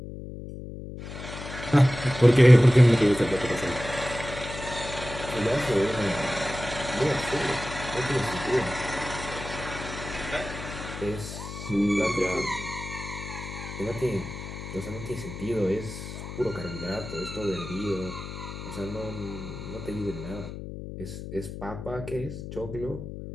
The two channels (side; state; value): left; noise; hum, 10 dB below the sound